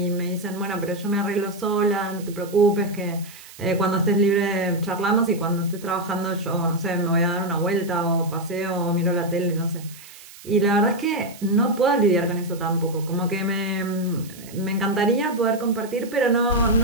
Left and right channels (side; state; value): right; noise; hiss, 19 dB below the sound